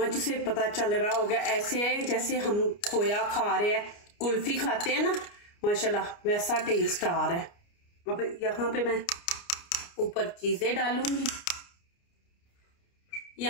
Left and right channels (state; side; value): late; right; 29 ms